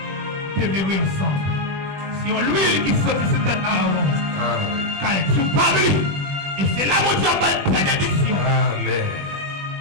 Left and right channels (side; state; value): left; late; 20 ms